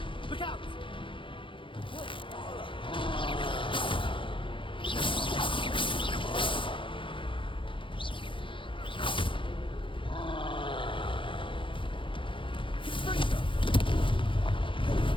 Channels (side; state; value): right; late; 0.25 ms